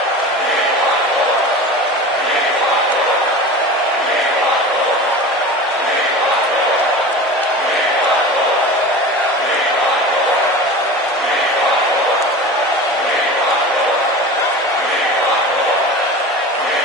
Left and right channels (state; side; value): normal; both; correlation 0.33